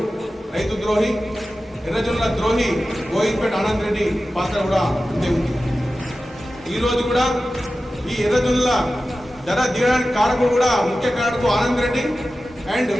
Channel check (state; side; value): normal; both; correlation 0.94